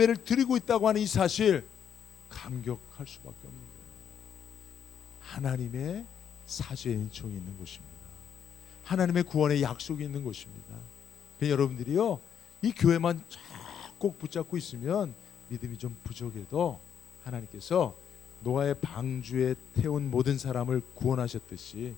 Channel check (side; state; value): right; quieter; 8.4 dB